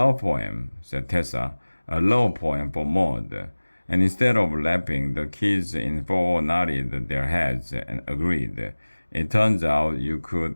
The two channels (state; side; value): inverted; both; correlation -1.00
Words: poem, said Tessa. A love poem for mud. And instead of laughing, the kids in 4 nodded their heads and agreed. It turns out you